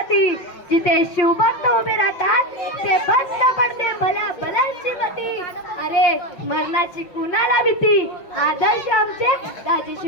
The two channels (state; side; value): late; right; 5.8 ms